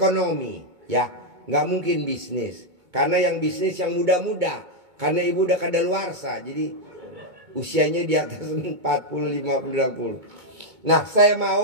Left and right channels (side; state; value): left; late; 2.2 ms